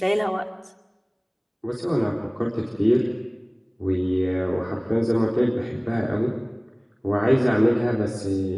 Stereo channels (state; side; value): identical; both; correlation 1.00